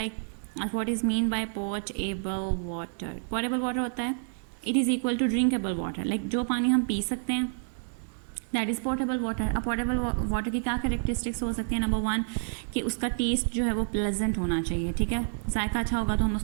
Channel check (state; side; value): silent; left; digital silence